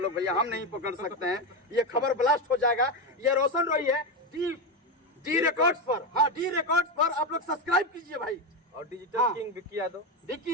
भैया, हम नहीं पकड़ सकते हैं, ये खबर ब्लास्ट हो जाएगा। ये रोशन रोई है डी रिकॉर्ड्स पर। हाँ डी रिकॉर्ड्स पर आप लोग सब्सक्राइब कीजिए भाई, और डिजिटल हाँ। किंग विक्की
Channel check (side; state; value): both; normal; correlation 0.12